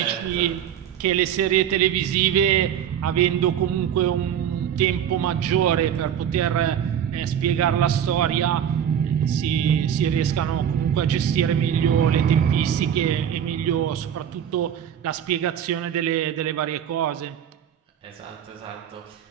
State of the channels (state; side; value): quieter; left; 9.2 dB